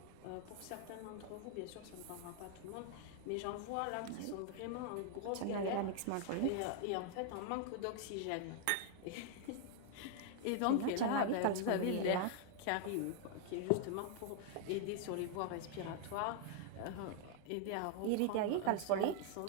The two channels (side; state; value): both; different; correlation 0.00